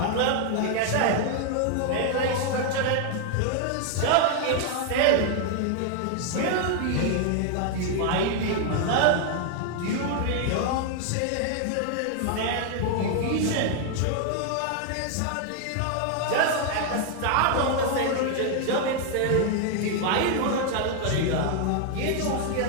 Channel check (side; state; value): both; different; correlation 0.00